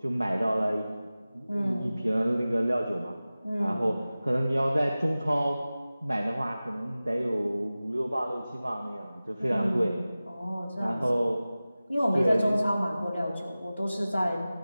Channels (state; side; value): inverted; both; correlation -0.97